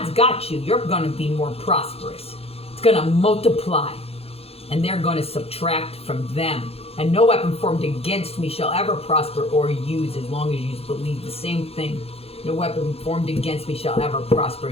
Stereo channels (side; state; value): right; late; 0.29 ms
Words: got you. You're going to be more prosperous. It's going to multiply. And they're going to subtract from them. And no weapon formed against me shall ever prosper or use as long as you believe the same thing. No weapon formed against me shall ever prosper,